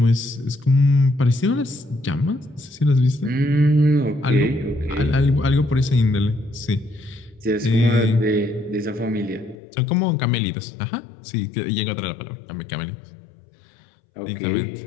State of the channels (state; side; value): drops out; right; at 9.6 s